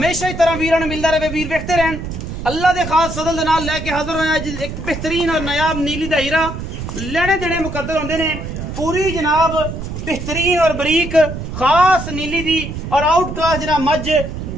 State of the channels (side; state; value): right; noise; rumble, 7 dB below the sound